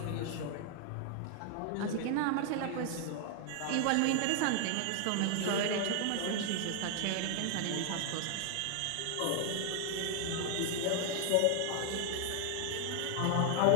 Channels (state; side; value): different; both; correlation 0.00